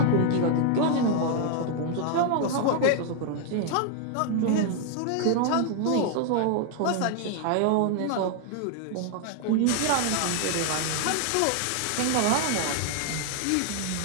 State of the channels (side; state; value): both; different; correlation 0.00